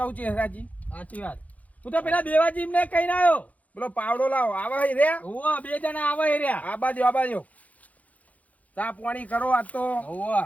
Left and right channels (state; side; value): late; right; 0.072 ms